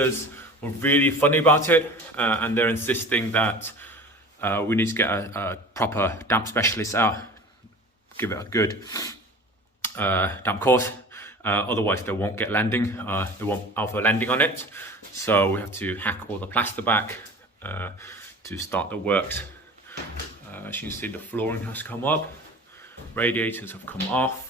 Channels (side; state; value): both; normal; correlation 0.40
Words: were really funny about it, and they're insisting that we need to get a proper damp specialist out, give it a good damp course, otherwise they won't get lending, they won't offer lending on it. So we have to hack all the plaster back to start the works. As you can see, the flooring has come up, radiators have come